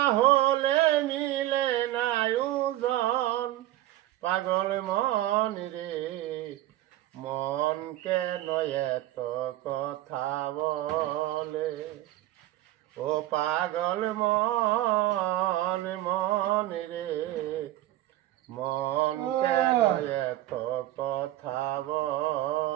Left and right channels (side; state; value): left; quieter; 15.0 dB